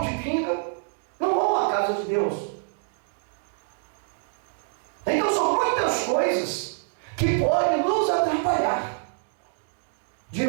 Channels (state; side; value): silent; left; digital silence